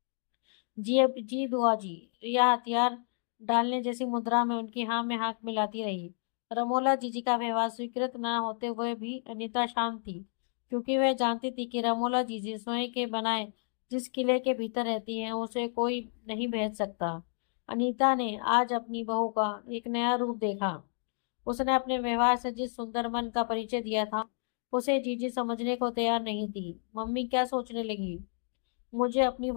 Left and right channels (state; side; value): silent; right; 57 dB below the other